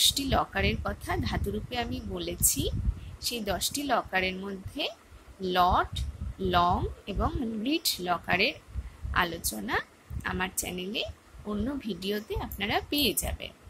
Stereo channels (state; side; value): identical; both; correlation 1.00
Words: লকারের কথা ধাতুরূপে আমি বলেছি, সেই 10টি লকারের মধ্যে লট, লং এবং রিট লকারের আলোচনা আমার চ্যানেলে অন্য ভিডিওতে আপনারা পেয়ে যাবেন।